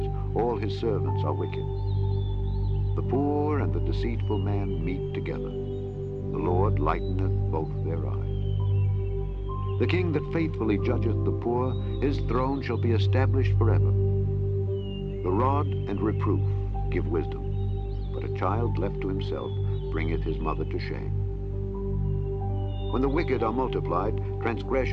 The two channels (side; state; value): both; identical; correlation 1.00